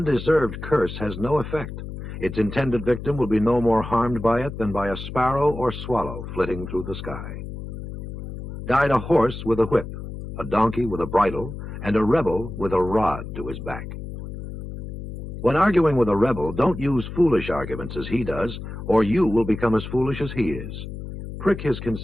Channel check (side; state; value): left; noise; hum, 9 dB below the sound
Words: curse has no effect. Its intended victim will be no more harmed by it than by a sparrow or swallow flitting through the sky. Guide a horse with a whip, a donkey with a bridle, and a rebel with a rod to his back. When arguing with a rebel, don't use foolish arguments as he does, or you will become as foolish as he is. Prick his